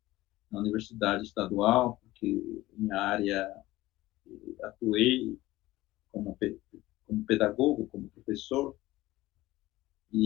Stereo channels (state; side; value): quieter; right; 17.4 dB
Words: na universidade estadual, porque minha área atuei como, como pedagogo, como professor,